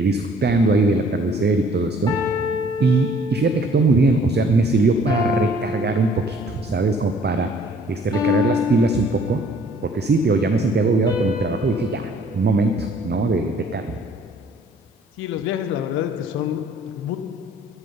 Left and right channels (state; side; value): normal; both; correlation 0.56